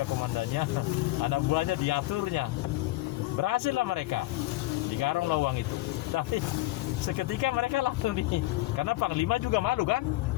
komandannya, anak buahnya diaturnya. Berhasil lah mereka. Digarung lah uang itu. Tapi seketika mereka langsung karena Panglima juga malu kan?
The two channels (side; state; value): right; quieter; 18.7 dB